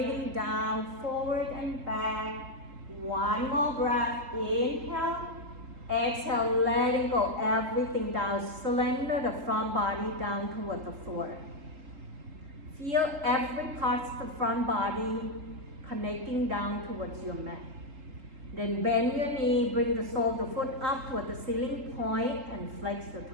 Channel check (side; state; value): left; late; 3.8 ms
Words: down, forward and back. One more breath. Inhale. Exhale, letting go everything down. Slender the front body down toward the floor. Feel every part of the front body connecting down towards your mat. Then bend your knee, bring the sole of the foot up toward the ceiling point and flex the